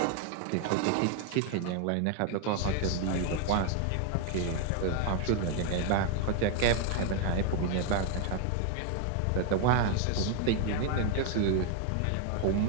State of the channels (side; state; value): both; different; correlation 0.01